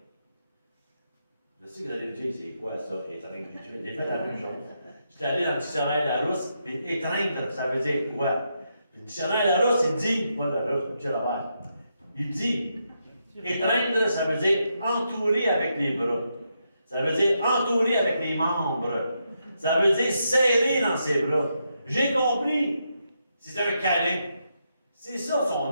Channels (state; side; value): inverted; both; correlation -0.82